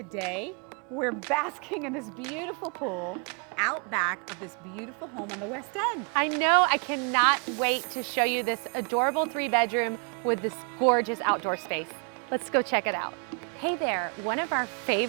we're basking in this beautiful pool out back of this beautiful home on the West End. I know, I cannot wait to show you this adorable 3-bedroom with this gorgeous outdoor space. Let's go check it out. Hey there, one of our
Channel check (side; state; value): left; quieter; 36.9 dB